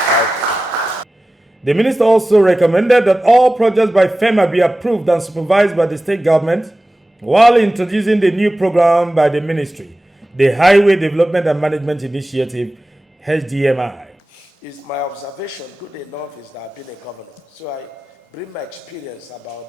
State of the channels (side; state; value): both; normal; correlation 0.95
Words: The minister also recommended that all projects by FEMA be approved and supervised by the state government, while introducing the new program by the ministry, the Highway Development and Management Initiative, HDMI. It's my observation, good enough, is that I've been a governor. So I bring my experience